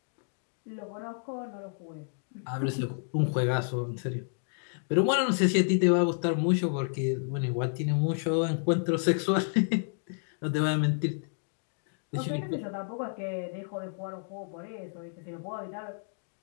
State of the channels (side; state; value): right; silent; digital silence